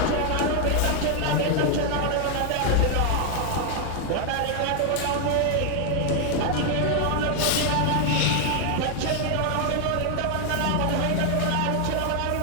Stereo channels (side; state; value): both; different; correlation 0.00